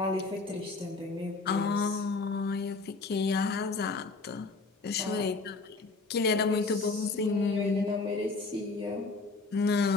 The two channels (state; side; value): quieter; right; 3.8 dB